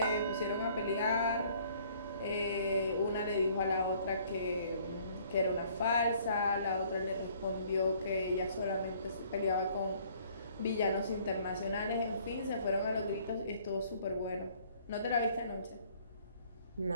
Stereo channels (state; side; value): inverted; both; correlation -0.59